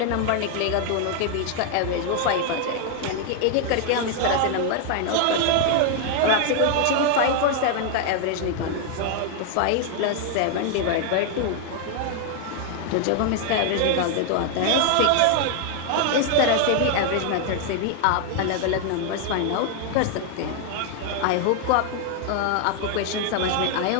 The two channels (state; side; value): different; both; correlation 0.00